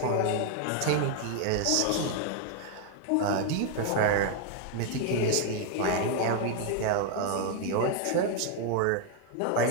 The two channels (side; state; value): both; different; correlation 0.00